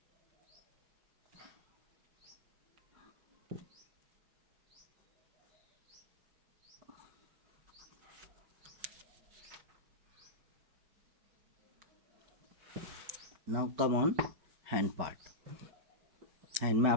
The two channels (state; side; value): late; left; 5.2 ms